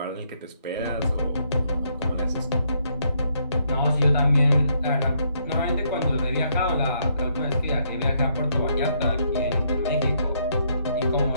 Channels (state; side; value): inverted; both; correlation -0.73